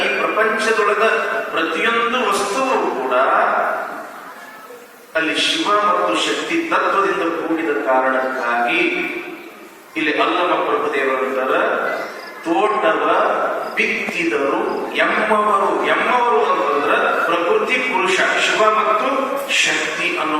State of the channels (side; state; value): both; identical; correlation 1.00